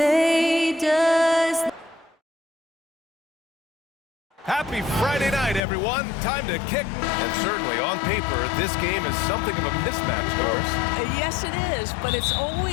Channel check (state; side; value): drops out; right; at 5.6 s